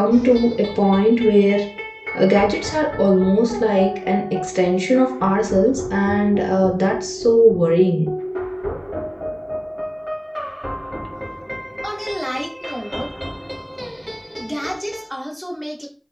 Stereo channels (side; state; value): both; identical; correlation 1.00